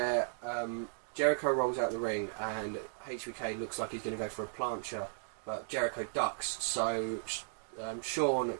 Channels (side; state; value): left; silent; digital silence